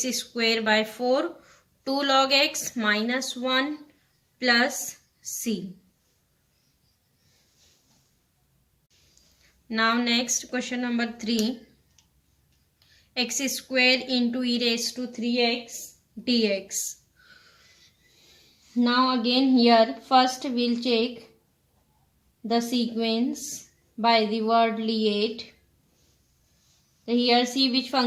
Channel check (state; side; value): identical; both; correlation 1.00